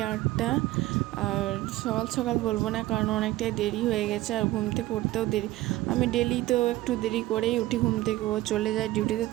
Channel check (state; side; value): quieter; left; 16.8 dB